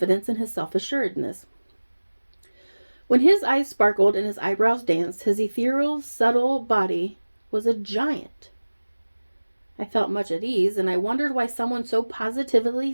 and his self-assuredness. When his eyes sparkled and his eyebrows danced, his ethereal, subtle body was a giant. I felt much at ease, and I wondered why someone so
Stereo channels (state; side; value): inverted; both; correlation -1.00